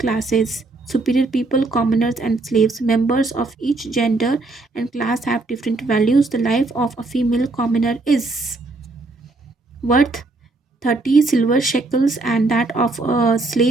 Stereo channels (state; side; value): quieter; left; 3.2 dB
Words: Superior people, commoners, and slaves. Members of each gender and class have different values. The life of a female commoner is worth 30 silver shekels and that of a